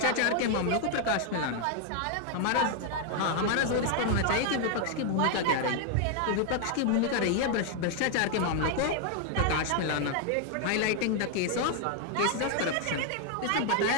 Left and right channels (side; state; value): both; different; correlation 0.00